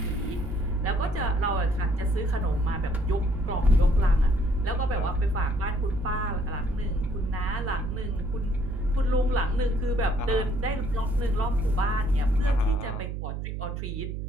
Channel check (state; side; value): noise; right; hum, 5 dB below the sound